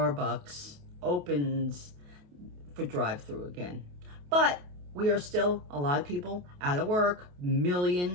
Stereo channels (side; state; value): left; late; 28 ms